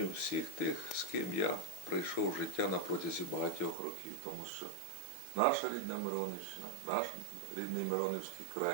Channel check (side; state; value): left; drops out; at 3.8 s